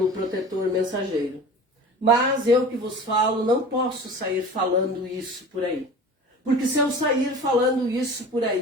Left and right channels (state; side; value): normal; both; correlation 0.38